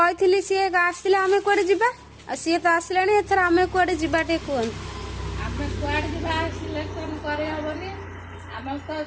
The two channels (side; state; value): both; identical; correlation 1.00